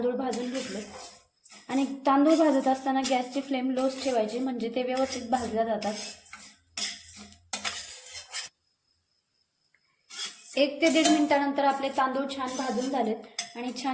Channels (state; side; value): identical; both; correlation 1.00